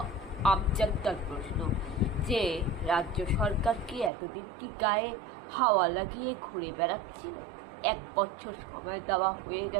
আমজনতার প্রশ্ন যে রাজ্য সরকার কি এতদিন কি গায়ে হাওয়া লাগিয়ে ঘুরে বেড়াচ্ছিল? 1 বছর সময় দেওয়া হয়ে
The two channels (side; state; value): left; drops out; at 4.1 s